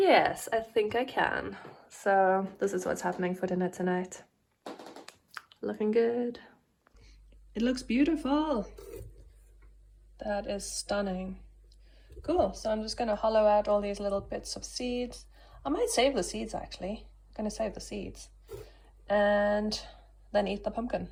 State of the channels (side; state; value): both; identical; correlation 1.00